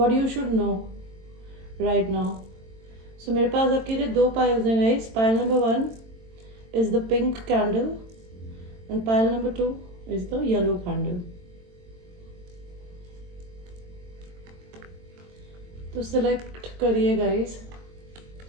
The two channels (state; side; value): late; left; 22 ms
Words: you should know right now. So मेरे पास आपके लिए दो पाइल्स हैं guys. Pile number 1 is the pink candle and pile number 2 is the yellow candle. तो सिलेक्ट करिए गाइस